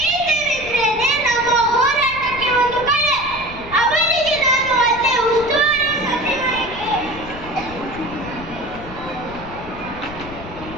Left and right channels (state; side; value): noise; left; rumble, 14 dB below the sound